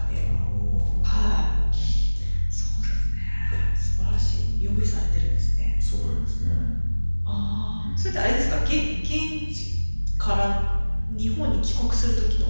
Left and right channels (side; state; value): both; inverted; correlation -1.00